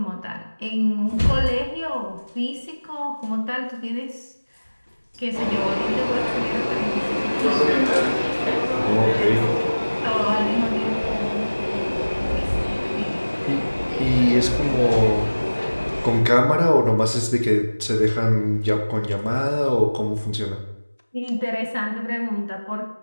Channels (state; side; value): inverted; both; correlation -1.00